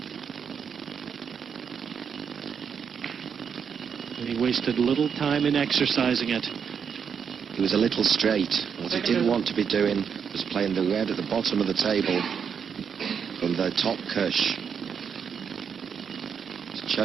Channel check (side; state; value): left; quieter; 7.0 dB